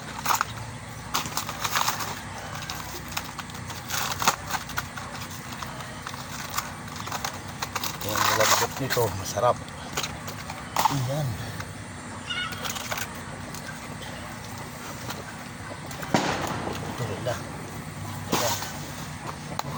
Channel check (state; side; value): identical; both; correlation 1.00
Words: Yung malambot nito, masarap. Ayan. Tuloy na.